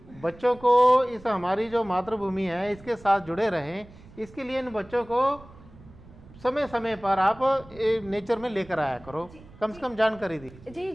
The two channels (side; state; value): right; noise; rumble, 21 dB below the sound